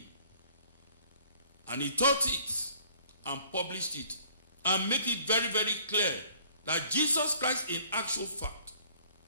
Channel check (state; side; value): inverted; both; correlation -0.58